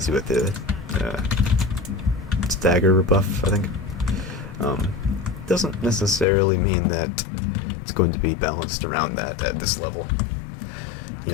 you with the stagger buff, I think. Doesn't necessarily mean that it's going to be balanced around that at this level. You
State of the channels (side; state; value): right; drops out; at 6.2 s